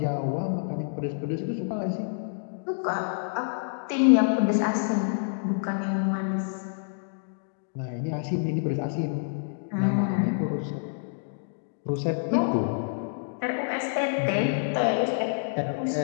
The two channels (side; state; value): right; silent; digital silence